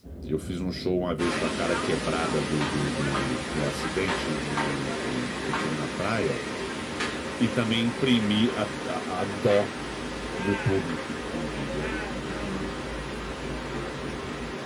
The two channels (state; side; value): identical; both; correlation 1.00